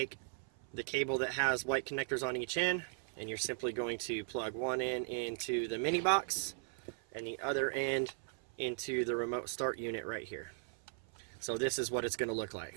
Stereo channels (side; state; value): left; silent; 53 dB below the other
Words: the cable that has white connectors on each end, and you're simply going to plug one end into the mini box and the other end into the remote start unit right here. So this is what it's going to look